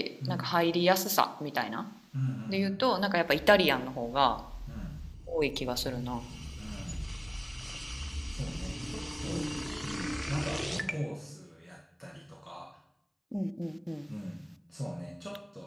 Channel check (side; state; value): both; identical; correlation 1.00